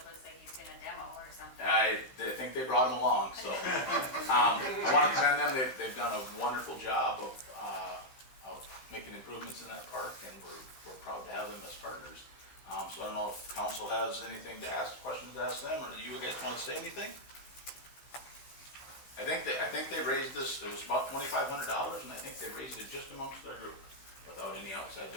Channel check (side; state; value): right; late; 15 ms